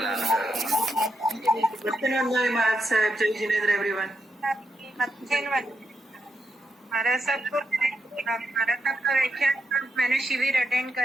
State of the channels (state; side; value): normal; both; correlation 0.83